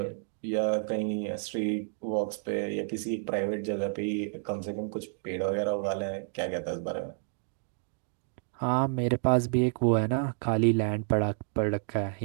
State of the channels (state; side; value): silent; left; digital silence